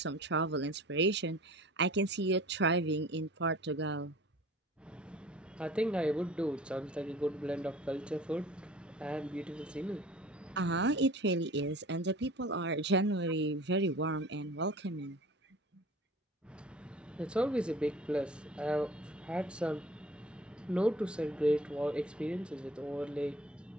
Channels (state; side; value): normal; both; correlation 0.45